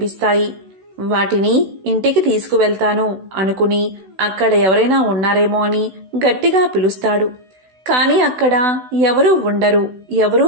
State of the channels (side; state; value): left; late; 16 ms